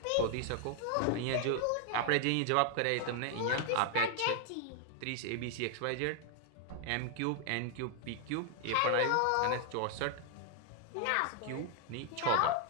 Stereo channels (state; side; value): different; both; correlation 0.00